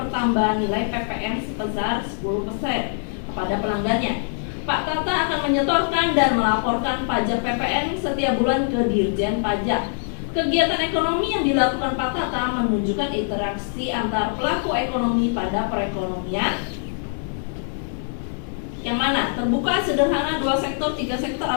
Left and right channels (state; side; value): silent; right; digital silence